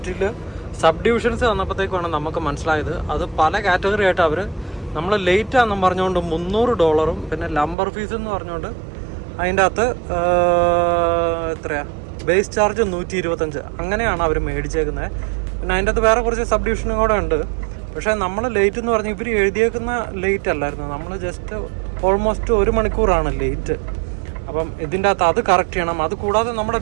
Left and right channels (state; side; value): drops out; left; at 7.8 s